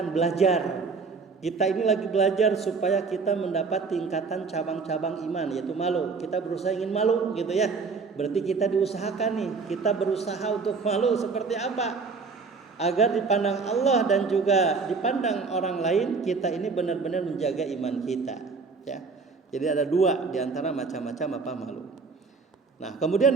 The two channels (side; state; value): left; quieter; 4.7 dB